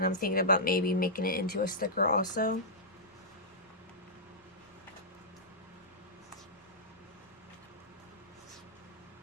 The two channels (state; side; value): normal; both; correlation -0.13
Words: I'm thinking about maybe making it into a sticker also.